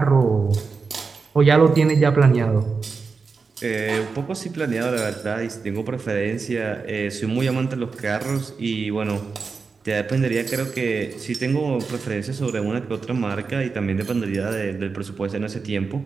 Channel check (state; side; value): quieter; left; 4.8 dB